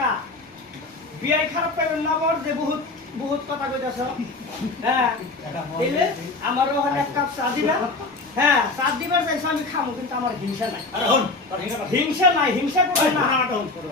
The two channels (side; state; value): right; quieter; 3.4 dB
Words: বিয়াই খারাপ পাইবেন না বর যে বহুত বহুত কথা কইতাছ হ্যাঁ তাইলে আমার ওখানে এক কাপ চা দিবা হ্যাঁ চা দিবার চাইছ আমি খামু কিন্তু আমার হিংসা নাই হিংসা করবে না